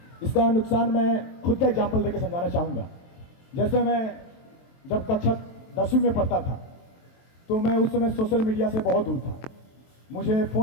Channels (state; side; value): late; right; 23 ms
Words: इसका नुकसान मैं खुद का एग्जाम्पल देकर समझाना चाहूँगा। जैसे मैं जब कक्षा 10वीं में पढ़ता था तो मैं उस समय सोशल मीडिया से बहुत दूर था, मुझे